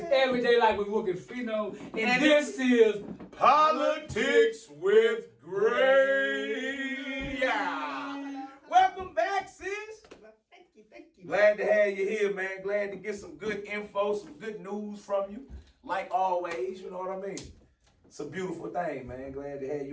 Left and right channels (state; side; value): identical; both; correlation 1.00